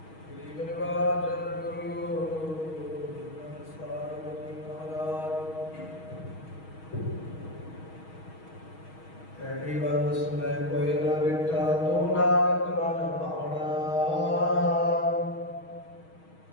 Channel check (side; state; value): right; late; 6.3 ms